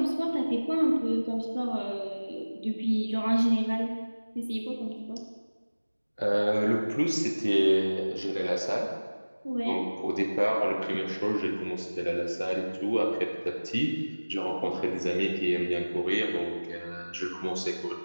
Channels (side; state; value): both; inverted; correlation -1.00